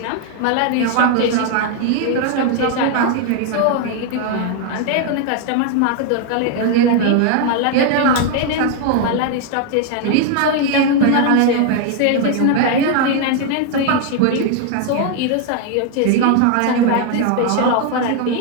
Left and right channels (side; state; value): both; different; correlation 0.01